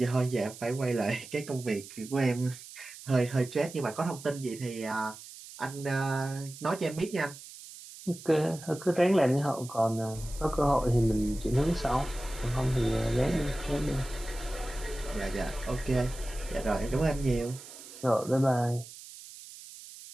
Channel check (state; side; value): noise; right; hiss, 16 dB below the sound